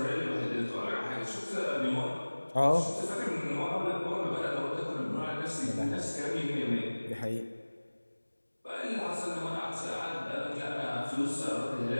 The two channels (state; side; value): inverted; both; correlation -1.00